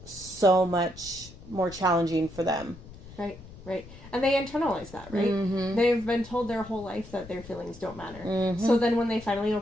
so much more challenging for them. Right. And they internalize that, right? Mm-hmm. They've been told their whole life that their feelings don't matter. Mm-hmm. So then when they finally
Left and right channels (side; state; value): left; noise; rumble, 17 dB below the sound